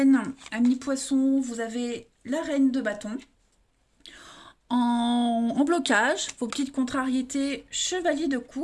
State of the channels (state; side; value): identical; both; correlation 1.00